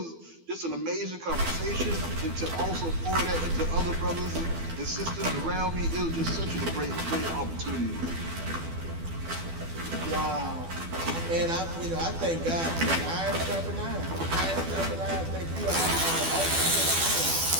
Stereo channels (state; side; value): late; left; 12 ms